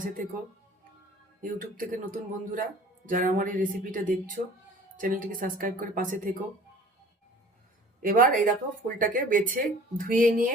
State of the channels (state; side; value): normal; both; correlation 0.48